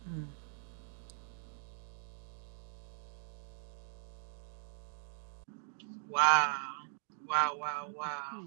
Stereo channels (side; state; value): left; silent; digital silence